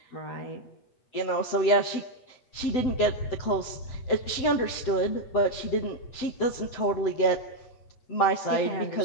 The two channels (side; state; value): right; late; 7.9 ms